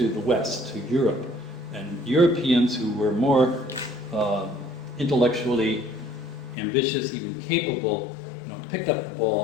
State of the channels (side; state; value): right; drops out; at 6.6 s